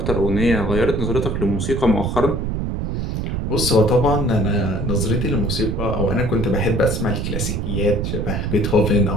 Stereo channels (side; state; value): right; noise; rumble, 2 dB below the sound